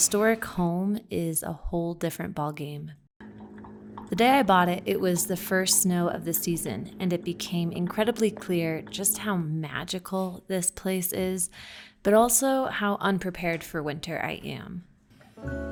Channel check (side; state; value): both; identical; correlation 1.00